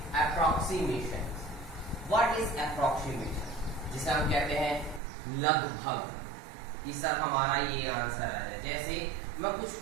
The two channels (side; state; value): left; drops out; at 5.0 s